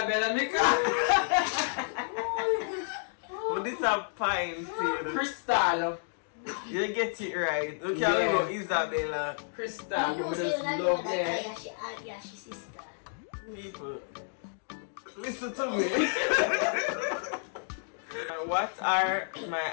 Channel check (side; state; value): right; silent; digital silence